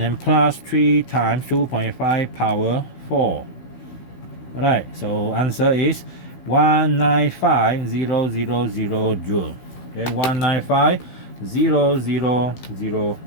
plus 3 times 2.5 power 4. Alright, so answer is 195,000 joule. Okay, 195,000 joule.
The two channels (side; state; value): right; late; 16 ms